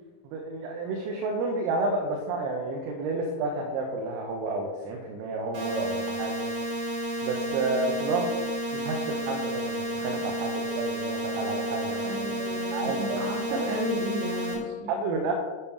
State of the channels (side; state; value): left; late; 30 ms